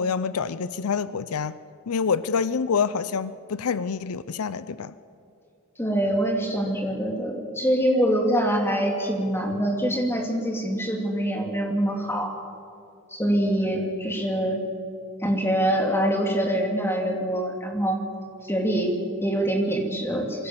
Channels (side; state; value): both; normal; correlation 0.46